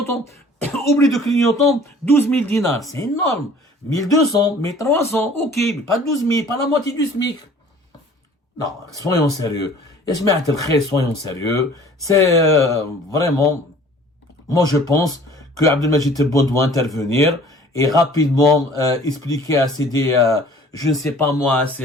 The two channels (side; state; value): both; normal; correlation 0.50